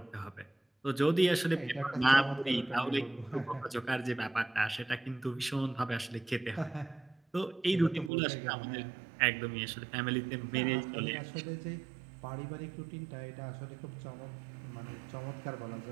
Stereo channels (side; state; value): left; drops out; at 8.1 s